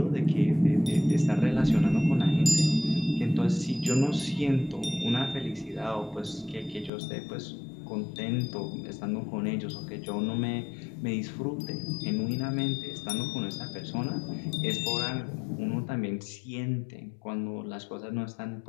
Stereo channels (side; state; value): right; drops out; at 6.9 s